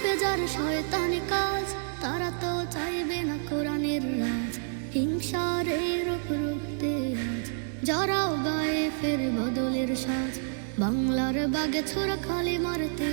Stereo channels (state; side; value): silent; left; digital silence